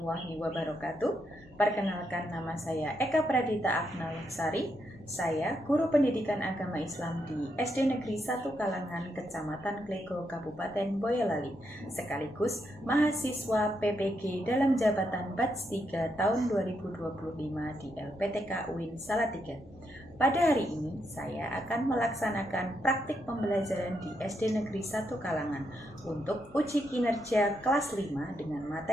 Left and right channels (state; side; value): normal; both; correlation 0.80